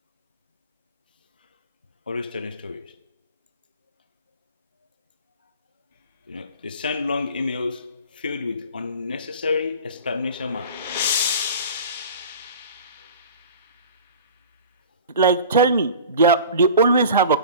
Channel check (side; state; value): both; inverted; correlation -0.39